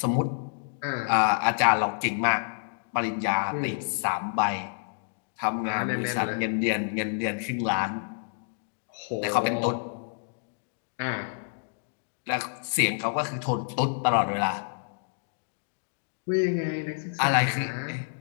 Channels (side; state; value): right; silent; digital silence